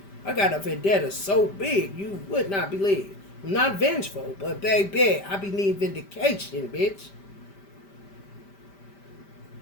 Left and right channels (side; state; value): right; late; 5.1 ms